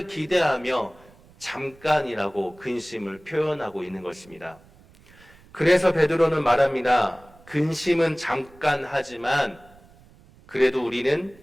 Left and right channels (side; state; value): right; noise; rumble, 26 dB below the sound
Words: 기대하며 잠깐이라고 근심을 표현하고 있는 것입니다. 그래서 베드로는 말합니다. 근심은 잠깐 하지만 그래도 우리는